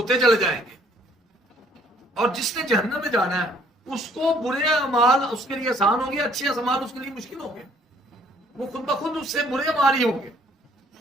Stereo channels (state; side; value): normal; both; correlation 0.62